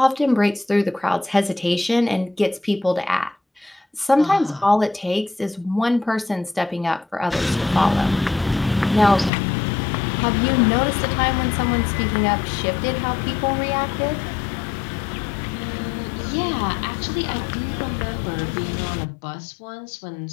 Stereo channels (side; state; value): right; drops out; at 9.3 s